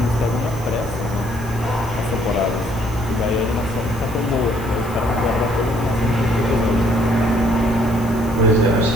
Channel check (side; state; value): right; noise; hiss, 19 dB below the sound